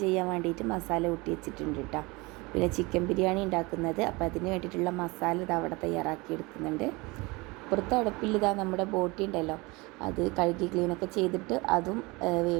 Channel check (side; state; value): left; quieter; 24.7 dB